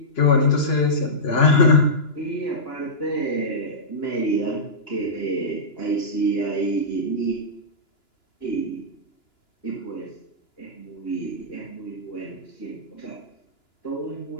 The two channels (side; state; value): right; late; 2.9 ms